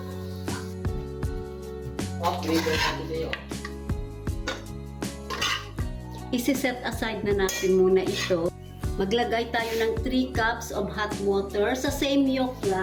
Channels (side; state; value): both; identical; correlation 1.00